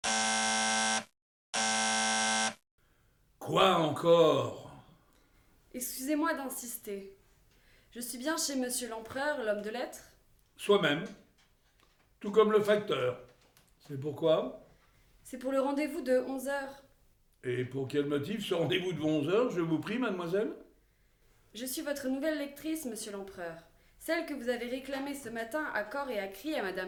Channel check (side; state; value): both; identical; correlation 1.00